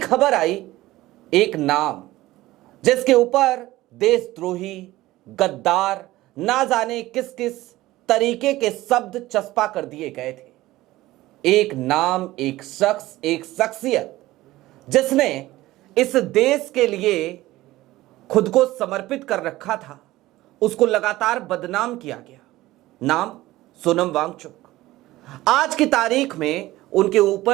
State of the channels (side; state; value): left; quieter; 17.2 dB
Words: आई, एक नाम जिसके ऊपर देशद्रोही, गद्दार, ना जाने किस किस तरीके के शब्द चस्पा कर दिए गए थे। एक नाम, एक शख्स, एक शख्सियत जिसने इस देश के लिए खुद को समर्पित कर रखा था, उसको लगातार बदनाम किया गया। नाम सोनम वांगचुक। आज की तारीख में उनके